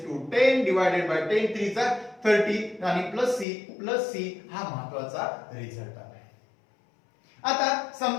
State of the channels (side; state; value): right; drops out; at 3.5 s